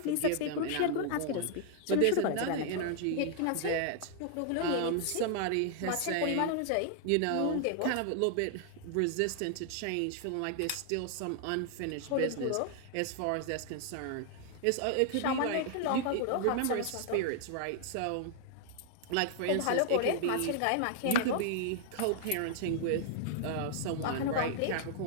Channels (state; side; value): different; both; correlation 0.00